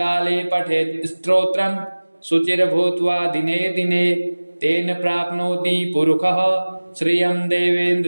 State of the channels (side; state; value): both; inverted; correlation -1.00